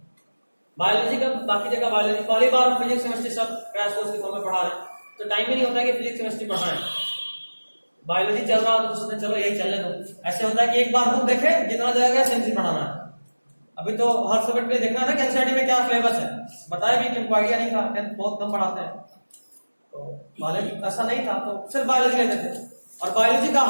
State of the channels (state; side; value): inverted; both; correlation -1.00